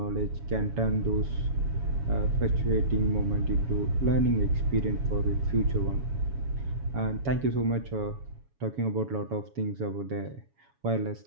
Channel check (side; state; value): left; late; 7.2 ms